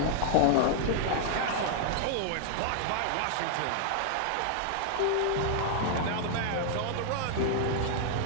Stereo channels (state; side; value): different; both; correlation 0.00